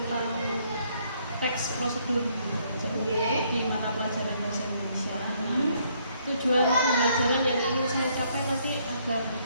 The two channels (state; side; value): inverted; both; correlation -0.69